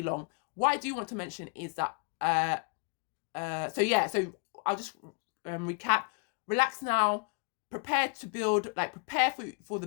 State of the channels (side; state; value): right; quieter; 36.4 dB